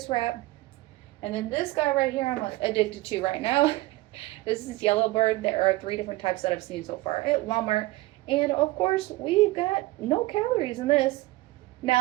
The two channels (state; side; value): quieter; left; 19.5 dB